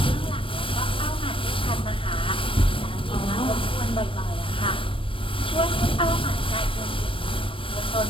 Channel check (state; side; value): late; right; 0.25 ms